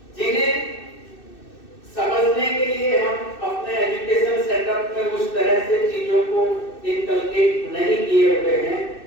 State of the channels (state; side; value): late; right; 2.6 ms